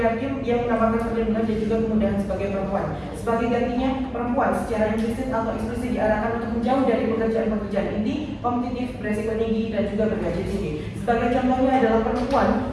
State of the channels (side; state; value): both; identical; correlation 1.00